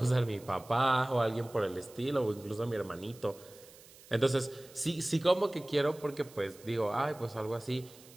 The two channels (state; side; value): noise; right; hiss, 22 dB below the sound